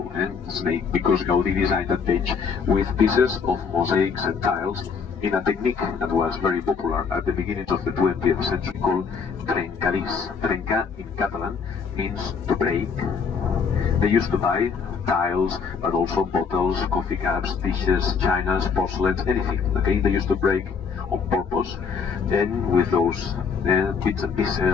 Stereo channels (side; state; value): right; quieter; 5.9 dB